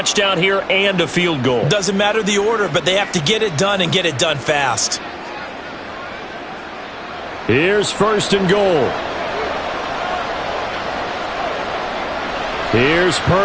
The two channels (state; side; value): identical; both; correlation 1.00